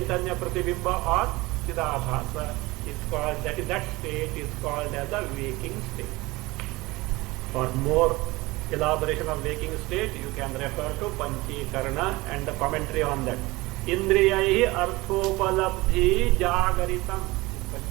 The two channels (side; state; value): left; quieter; 21.5 dB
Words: Pratibimba or Chidabhasa is called, that state is called as a waking state. For more elaboration of waking state, you can refer to Panchikarna and the commentary on that. Indriyaihi arthopalabdhi jagaritam.